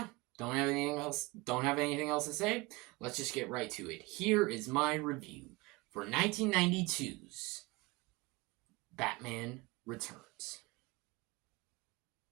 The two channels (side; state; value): left; quieter; 23.5 dB